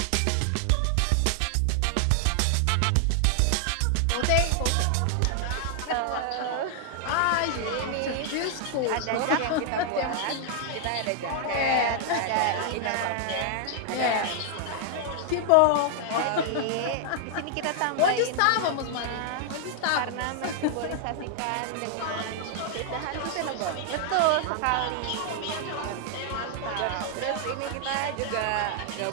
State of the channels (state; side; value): different; both; correlation 0.00